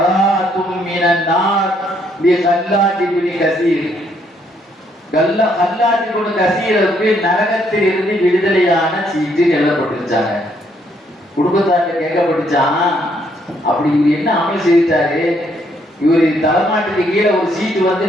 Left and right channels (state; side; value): normal; both; correlation 0.70